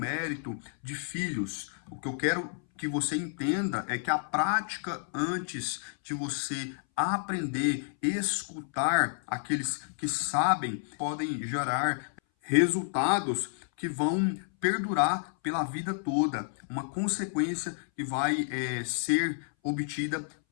de filhos. O que eu quero que você entenda é que a prática antes de você aprender, escutar aqueles que sabem, podem gerar resultados que vão perdurar pela vida toda. Uma consequência que vai ser obtida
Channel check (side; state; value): right; silent; 58 dB below the other